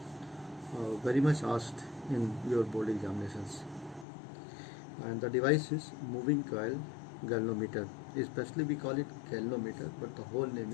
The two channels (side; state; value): right; drops out; at 4.0 s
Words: very much asked in your board examinations. And the device is moving coil galvanometer. Especially we call it galvanometer, but the whole name